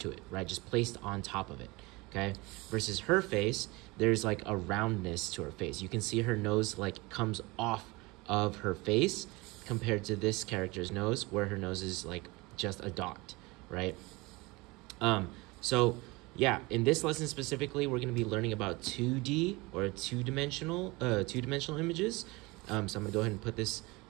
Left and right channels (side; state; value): left; quieter; 23.7 dB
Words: to it, right? Just placed on top of it, okay? Versus her face, there's like a roundness to her face. You can see her nose like comes off of her face compared to this character's nose where her nose is like just a dot, right? So yeah, in this lesson specifically, we're going to be learning about 2D or two-dimensional images. So I'm going to go ahead and put this